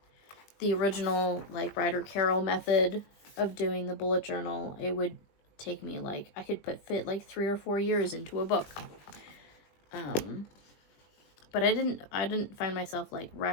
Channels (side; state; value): right; late; 20 ms